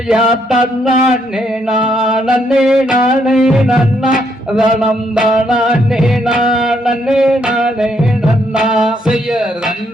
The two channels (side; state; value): both; normal; correlation 0.73